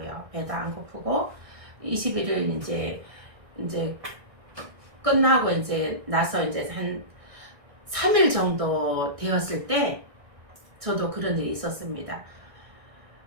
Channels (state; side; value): late; left; 1.6 ms